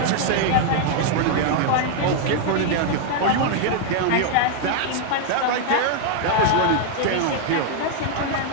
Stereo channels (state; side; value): different; both; correlation 0.00